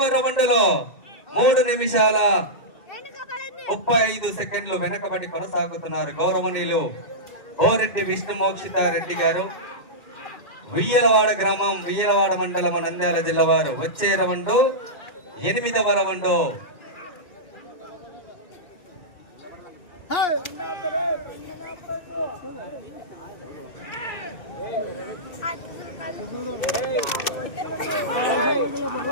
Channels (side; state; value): right; late; 2.6 ms